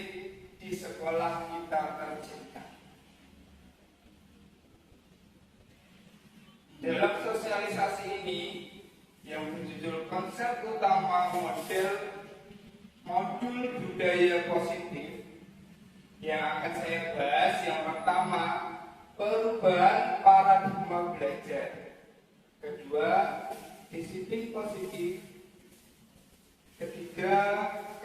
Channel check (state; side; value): identical; both; correlation 1.00